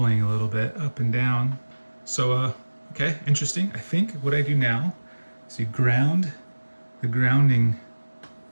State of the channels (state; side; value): inverted; both; correlation -1.00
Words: a little bit up and down. So, okay, interesting. I think what I do now is you ground the grounding